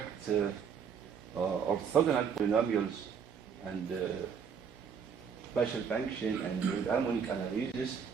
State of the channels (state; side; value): quieter; left; 6.8 dB